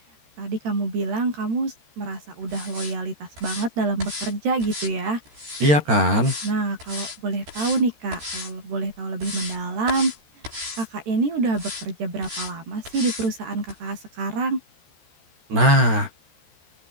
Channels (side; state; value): left; late; 13 ms